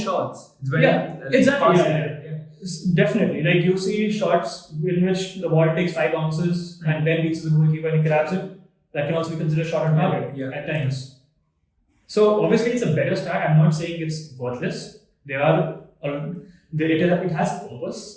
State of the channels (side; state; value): both; identical; correlation 1.00